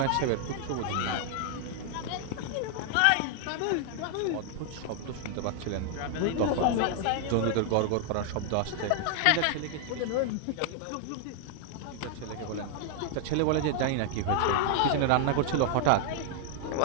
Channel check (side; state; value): both; different; correlation 0.00